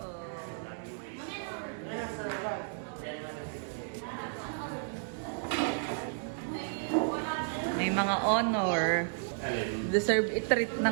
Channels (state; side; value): silent; left; digital silence